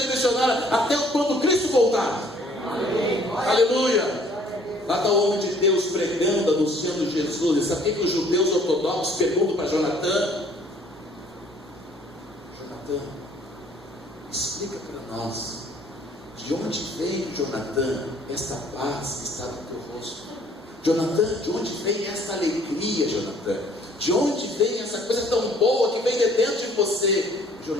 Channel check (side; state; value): both; normal; correlation 0.59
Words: missionária até quando Cristo voltar. Amém. Aleluia. Lá está o homem de Deus pregando, anunciando Jesus. E sabe o que os judeus ortodoxos perguntam para Jonathan? Jonathan, explica para nós, de onde vem, Jonathan, esta paz que está no teu rosto? Jonathan, de onde vem esta alegria, Jonathan? De onde vem essa coisa tão boa que vem de dentro de você?